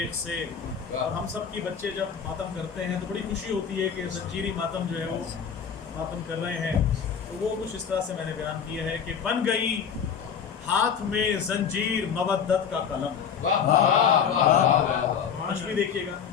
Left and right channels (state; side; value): quieter; right; 7.3 dB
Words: سے. اور ہم سب کی بچے جب ماتم کرتے ہیں تو بڑی خوشی ہوتی ہے کہ زنجیری ماتم جو ہے وہ ماتم کر رہے ہیں. تو وہ کچھ اس طرح سے میں نے بیان کیا ہے کہ بن گئی ہاتھ میں زنجیر مودت کا قلم. مشکل دیکھیے گا.